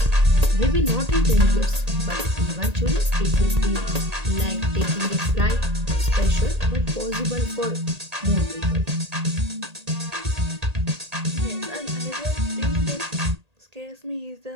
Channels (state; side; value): late; left; 1.8 ms